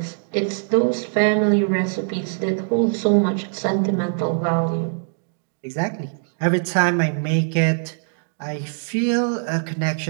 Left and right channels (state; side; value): silent; left; digital silence